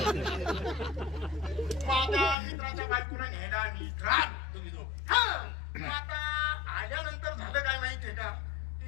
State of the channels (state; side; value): drops out; right; at 2.4 s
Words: माझ्या मित्राच्या बायकोला न्यायला आम्ही तुम्ही दोघ आता आल्यानंतर झालं काय माहितीये का